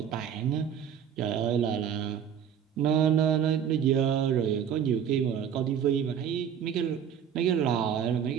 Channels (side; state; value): left; quieter; 8.6 dB